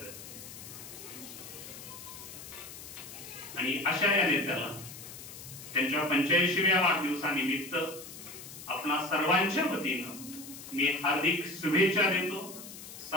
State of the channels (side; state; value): left; noise; hiss, 13 dB below the sound